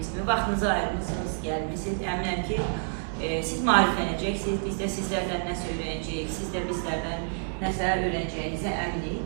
kimi. Vaxtınızı ayırmışsınız, gəlmişsiniz. Əminəm ki, siz maariflənəcəksiniz, biz də sizlərdən nəsə öyrənəcəyik, siz də bizlərdən nəsə öyrənəcəyinizə əminik.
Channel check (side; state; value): left; silent; digital silence